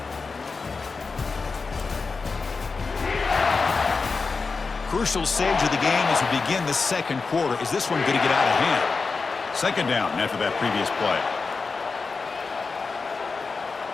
Crucial stage of the game as we begin the 2nd quarter. Is this one going to get out of hand? 2nd down after that previous play.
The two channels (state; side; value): quieter; right; 4.5 dB